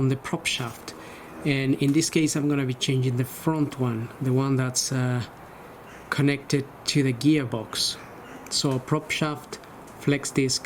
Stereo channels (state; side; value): identical; both; correlation 1.00